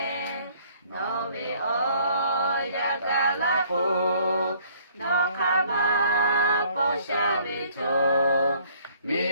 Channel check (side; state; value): both; inverted; correlation -0.60